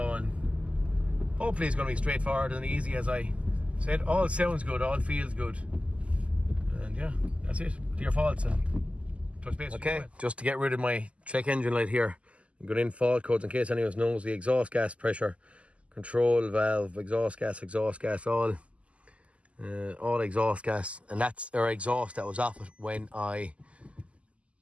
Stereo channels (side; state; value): left; late; 0.061 ms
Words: and hopefully it's going to be straightforward and easy. As I said, all sounds good, all feels good, and yeah, that's it. Clear faults and touch base. Okay, just to get rid of my check engine light here, I'm going in fault codes in case anyone knows. The exhaust gas pressure control valve, exhaust gas, all exhaust gas, and that's our exhaust that was off it when I